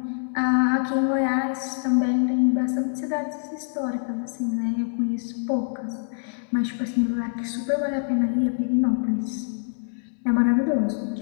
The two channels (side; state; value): right; silent; 62 dB below the other